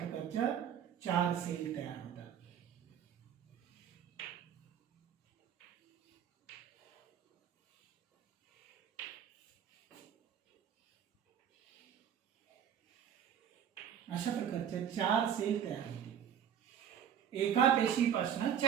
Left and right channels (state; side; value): quieter; left; 8.9 dB